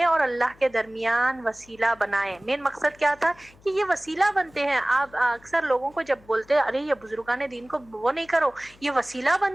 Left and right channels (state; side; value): noise; left; hum, 27 dB below the sound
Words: اور اللہ کے درمیان وسیلہ بنائیں. مین مقصد کیا تھا؟ کہ یہ وسیلہ بنتے ہیں. آپ اکثر لوگوں کو جب بولتے ہیں ارے یہ بزرگان دین کو وہ نہیں کرو، یہ وسیلہ